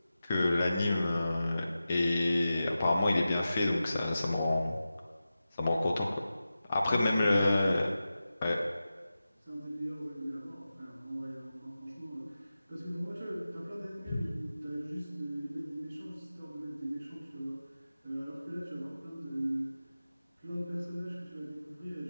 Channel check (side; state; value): both; inverted; correlation -0.93